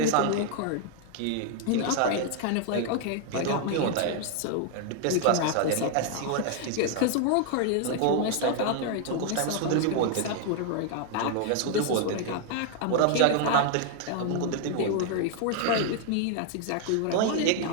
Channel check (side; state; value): both; different; correlation 0.00